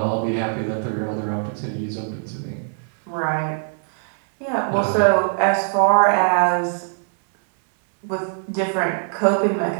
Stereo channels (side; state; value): left; silent; 65 dB below the other